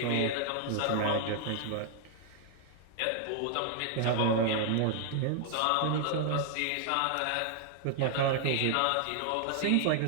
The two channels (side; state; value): both; different; correlation 0.00